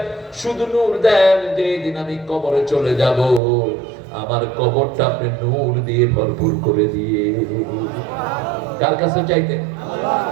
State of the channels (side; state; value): left; drops out; at 3.4 s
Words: শুধু নূর দেন যে দিন আমি কবরে চলে যাব আমার কবরটা আপনি নূর দিয়ে ভরপুর করে দিয়ে। কার কাছে চাইতেন?